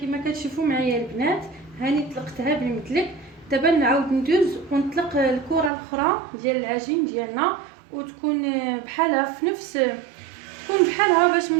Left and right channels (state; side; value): drops out; left; at 5.7 s